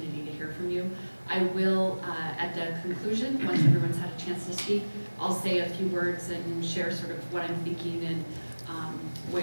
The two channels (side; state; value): both; inverted; correlation -1.00